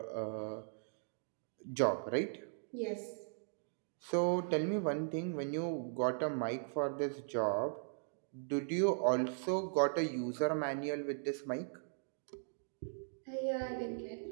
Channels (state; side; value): silent; left; digital silence